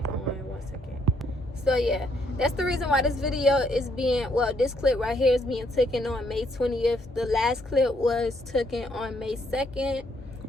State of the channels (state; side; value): normal; both; correlation 0.71